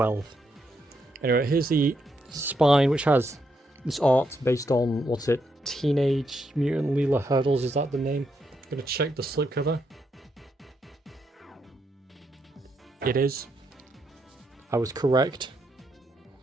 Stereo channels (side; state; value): both; normal; correlation 0.79